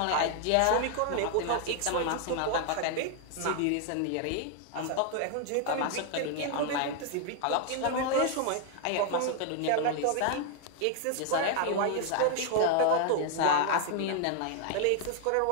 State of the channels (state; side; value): different; both; correlation 0.00